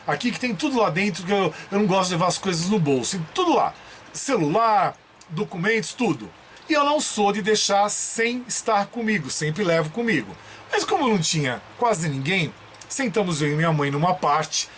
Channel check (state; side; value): identical; both; correlation 1.00